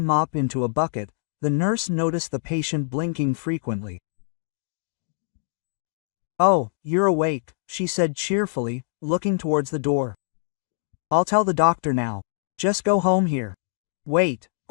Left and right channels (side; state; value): right; silent; digital silence